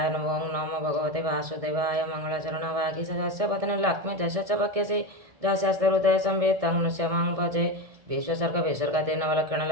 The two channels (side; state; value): left; late; 1.6 ms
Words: ନମୋ ନମୋ ଭଗବତେ ବାସୁଦେବାୟ ମଙ୍ଗଳାଚରଣ ବାଗୀଶ ପତ୍ନୀ ଲକ୍ଷ୍ମୀ ଯଶ च वक्यसे ଯସ୍ୟାସ୍ତେ ହୃଦୟ ସମ୍ବିତ तं ନୃସିଂହଂ ଭଜେ ବିଶ୍ୱସର୍ଗ ବିସର୍ଗାଦି ନବଲକ୍ଷଣ